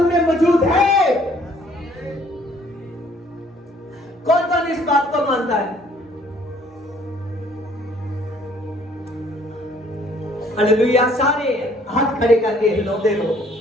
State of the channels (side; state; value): both; normal; correlation 0.60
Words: में मौजूद है। कौन कौन इस बात को मानता है? हालेलुया। सारे हाथ खड़े करके हिलाते रहो।